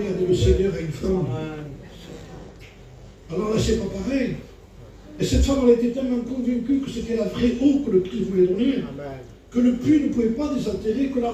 a dit le Seigneur à une femme. Alors là, c'est pas pareil. Et cette femme, elle était tellement convaincue que c'était la vraie eau que le Christ voulait donner, que le puits ne pouvait pas désaltérer, que la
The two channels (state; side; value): identical; both; correlation 1.00